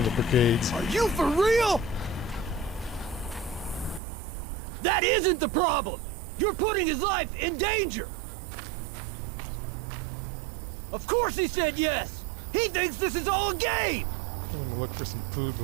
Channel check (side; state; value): left; drops out; at 4.0 s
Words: the brigades. Are you for real? That isn't the problem! You're putting his life in danger! Of course he said yes! He thinks this is all a game! I'm gonna look for some food